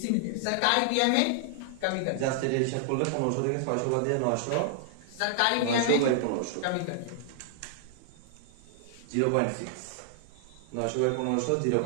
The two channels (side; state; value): both; different; correlation -0.01